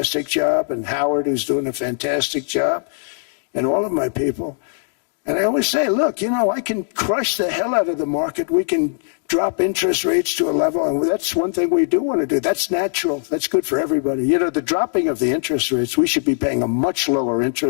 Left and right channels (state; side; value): silent; right; 66 dB below the other